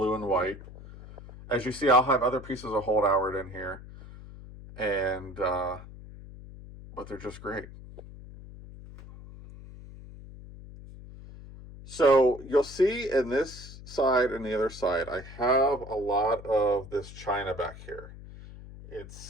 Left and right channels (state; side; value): noise; left; hum, 16 dB below the sound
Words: and white. As you see, I'll have other pieces of Holt Howard in here, and but they're just great. So you'll see in this side and the other side, I have a lot of this china back here.